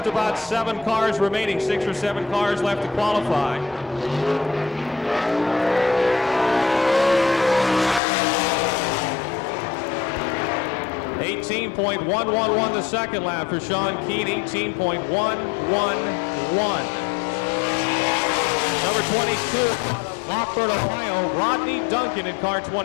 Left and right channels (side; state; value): right; drops out; at 8.0 s